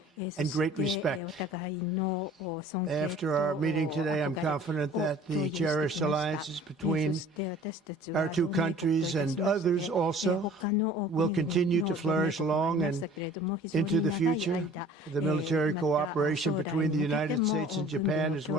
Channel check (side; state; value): both; normal; correlation 0.48